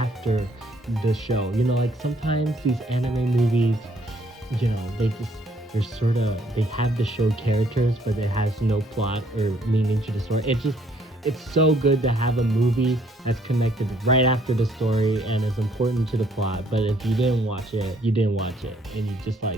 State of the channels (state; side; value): normal; both; correlation 0.65